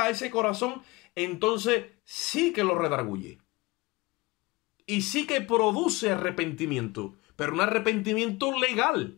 a ese corazón, entonces sí que lo redarguye. Y sí que produce arrepentimiento, pero un arrepentimiento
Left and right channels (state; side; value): quieter; right; 22.5 dB